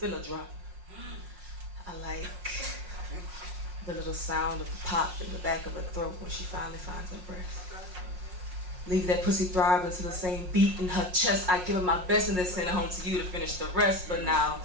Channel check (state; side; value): late; left; 5.5 ms